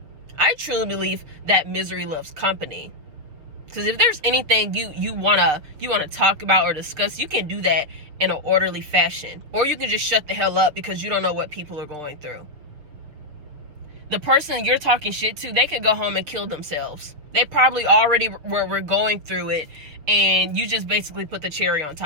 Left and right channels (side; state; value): left; late; 6.4 ms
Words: I truly believe that misery loves company. Because if there's anything you wanna talk about or discuss, you can do that in an orderly fashion. Or you can just shut the hell up because you don't know what people are going through. The person you're talking shit to, they could go home and kill themselves. They probably already were going through it, and you just basically put the cherry on